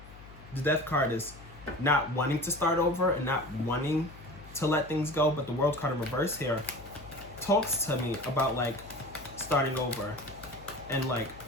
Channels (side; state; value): left; noise; hum, 18 dB below the sound